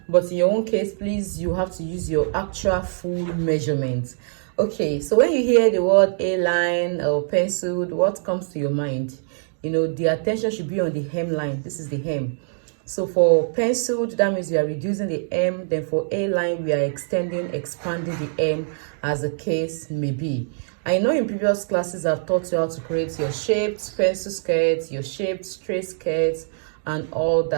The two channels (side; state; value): left; silent; digital silence